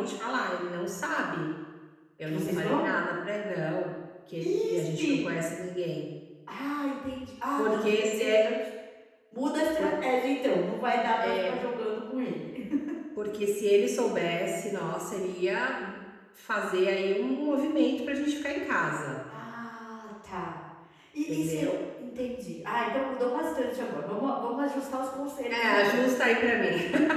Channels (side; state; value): both; identical; correlation 1.00